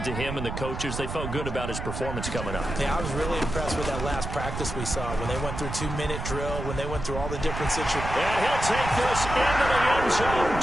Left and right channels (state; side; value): noise; right; rumble, 6 dB below the sound